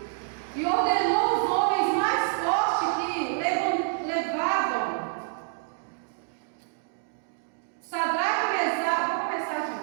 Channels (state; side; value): silent; left; 57 dB below the other